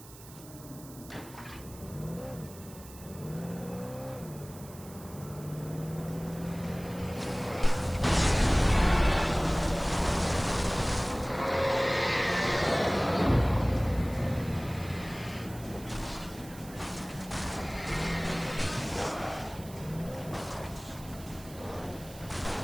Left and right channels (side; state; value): right; noise; hiss, 19 dB below the sound